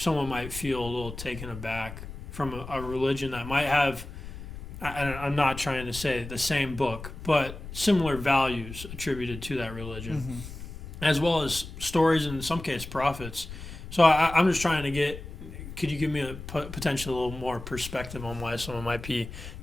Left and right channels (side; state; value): left; noise; rumble, 11 dB below the sound